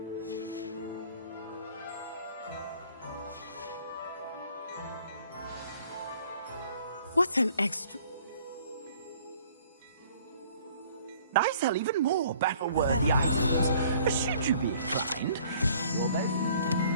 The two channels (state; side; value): inverted; both; correlation -0.56